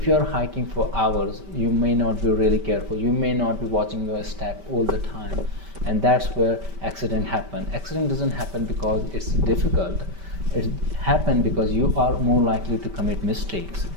you are hiking for hours, you may not be really careful. You may not be watching your step all the time. And that's where accident happen. Accident doesn't happen because it's difficult. It happen because you are more likely to commit mistakes.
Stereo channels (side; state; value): left; late; 5.2 ms